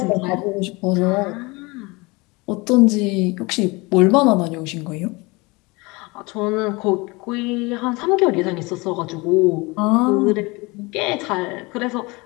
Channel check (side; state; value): right; quieter; 25.1 dB